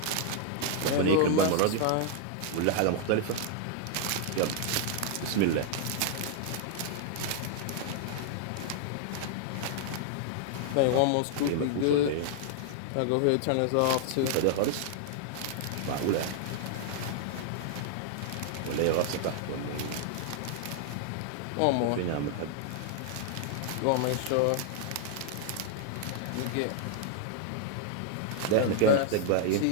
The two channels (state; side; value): different; both; correlation 0.00